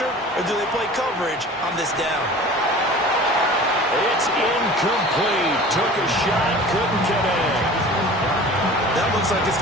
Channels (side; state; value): both; normal; correlation 0.41